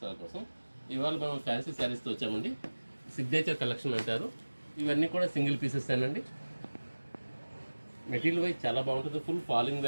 కోసం. ఇవాళ మనం ఫ్యాన్సీ శారీస్తో వచ్చామండి. సిగ్నేచర్ కలెక్షన్ అంటారు. ఇవన్నీ కూడా సింగిల్ పీసెస్ అండి. మెటీరియల్ వైజ్ చాలా బాగుంటుంది. ఫుల్ ఫాలింగ్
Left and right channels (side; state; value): both; inverted; correlation -1.00